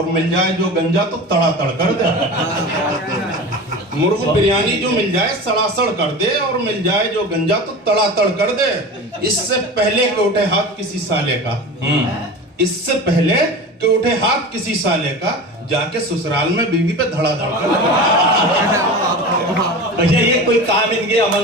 मिल जाए जो गंजा तो तड़ातड़ कर दे। मुर्ग बिरयानी जो मिल जाए सड़ासड़ कर दे, और मिल जाए जो गंजा तो तड़ातड़ कर दे। इससे पहले कि उठे हाथ किसी साले का, इससे पहले कि उठे हाथ किसी साले का, जाके ससुराल में बीवी पे धड़ाधड़ कर दे। भैया ये कोई काम इनके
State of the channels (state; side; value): normal; both; correlation 0.32